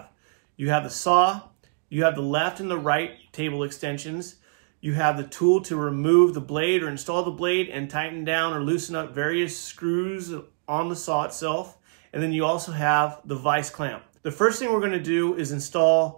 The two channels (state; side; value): silent; left; digital silence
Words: You have the saw, you have the left and the right table extensions, you have the tool to remove the blade or install the blade and tighten down or loosen up various screws on the saw itself, and then you also have the vise clamp. The first thing we're going to do is